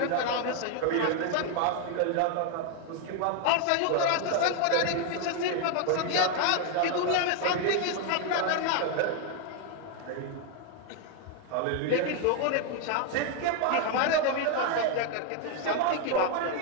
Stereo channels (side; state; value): both; different; correlation 0.00